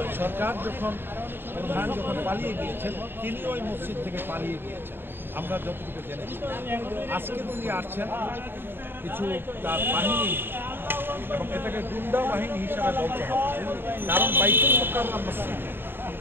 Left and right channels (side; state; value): left; late; 0.10 ms